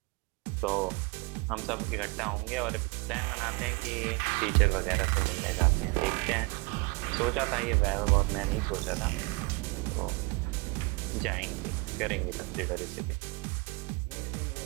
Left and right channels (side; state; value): left; quieter; 28.4 dB